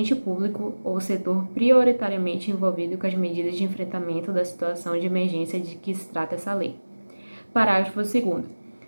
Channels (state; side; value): inverted; both; correlation -1.00